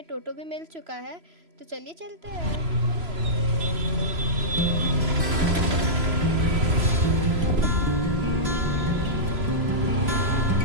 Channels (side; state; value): left; late; 3.0 ms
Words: टोटो भी मिल चुका है। तो चलिए चलते हैं।